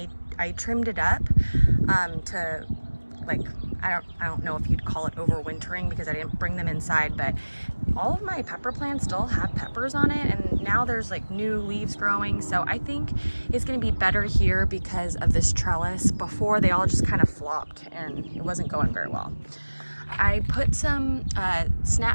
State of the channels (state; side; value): inverted; both; correlation -1.00